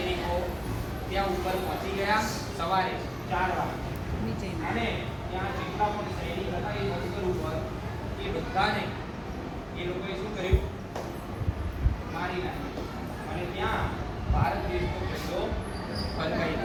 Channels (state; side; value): identical; both; correlation 1.00